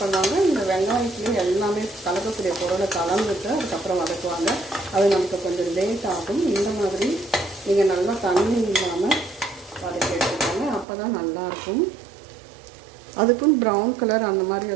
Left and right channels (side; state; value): left; drops out; at 10.9 s